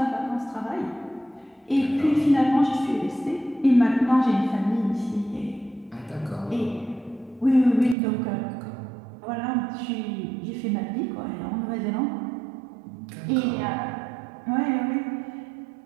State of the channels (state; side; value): drops out; left; at 8.0 s